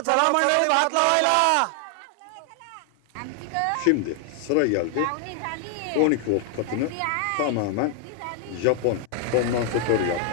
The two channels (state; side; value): different; both; correlation 0.00